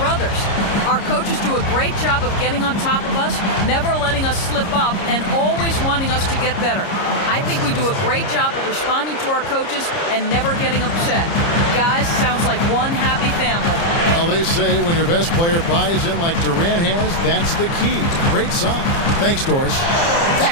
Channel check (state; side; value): late; right; 30 ms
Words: Our coaches do a great job of getting on top of us, never letting us slip up, and always wanting us to get better. I think we do a great job of responding to our coaches and never getting upset. Guys, sounds like one happy family." Well, they say when your best player buys in like Durant has, that's the key. Great song. Thanks, Doris.